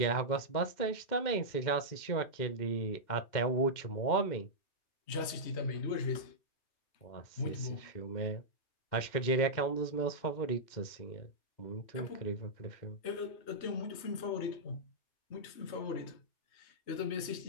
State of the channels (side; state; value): right; late; 2.1 ms